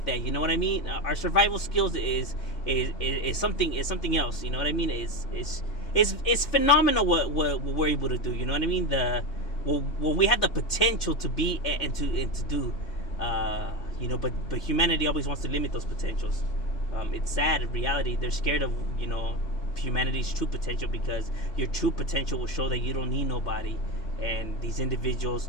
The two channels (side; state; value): right; late; 3.1 ms